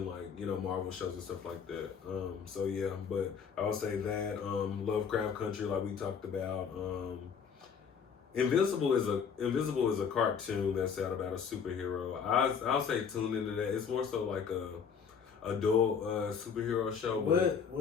like, you know, Marvel shows and stuff like that. So yeah, but I would say that Lovecraft Country, like we talked about. Invisible is a cartoon that's out about a superhero. I'll say tune into that. It's more so like a adult superhero show. What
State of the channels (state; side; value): quieter; right; 6.7 dB